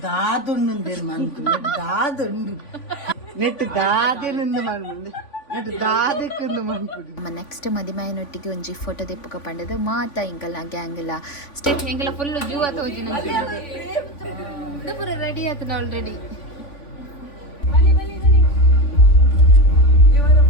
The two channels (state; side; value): late; right; 3.5 ms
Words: ದಾದುಂಡು ಮಂತು ದಾದುಂಡು ನೆಟ್ ದಾದಿನಿಂದ ಮಾಡ್ಬಂದು ನೆಟ್ ದಾದಕ್ಕಿಂದ ಮಾಡ್ಬಿಡಿ ನಮ್ಮ ನೆಕ್ಸ್ಟ್ ಮದಿಮೆಯನೊಟ್ಟಿಗೆ ಒಂಜಿ ಫೋಟೋ ತೆಪ್ಪಕ ಪಂಡದು ಮಾತ ಇಂಕಲ್ಲ ಗ್ಯಾಂಗ್ ಎಲ್ಲ ಸ್ಟೇಟ್ ಹೆಂಗೆಲ್ಲ ಫುಲ್ ಜೂ ಆತೋಜಿ ಪೂರ ರೆಡಿ ಆತನ ಆಲ್ರೆಡಿ